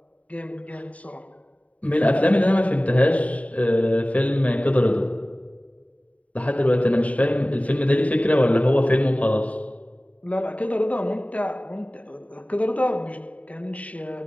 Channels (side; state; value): right; late; 0.068 ms